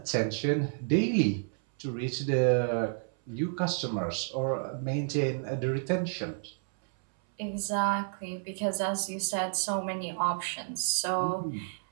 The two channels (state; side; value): silent; left; 57 dB below the other